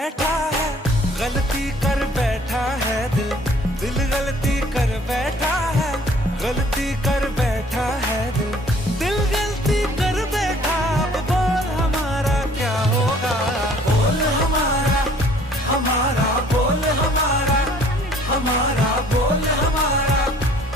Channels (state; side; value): normal; both; correlation 0.56